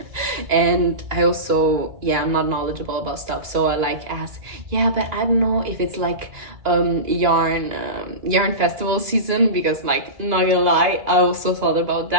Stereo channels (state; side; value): late; left; 2.9 ms